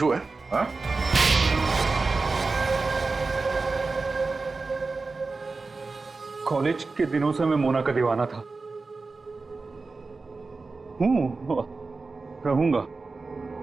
है? हाँ? कॉलेज के दिनों से मैं मोना का दीवाना था, रहूंगा।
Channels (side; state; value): left; quieter; 3.9 dB